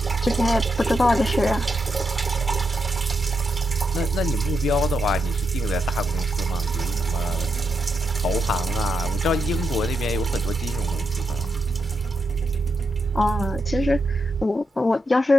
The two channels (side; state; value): both; normal; correlation 0.83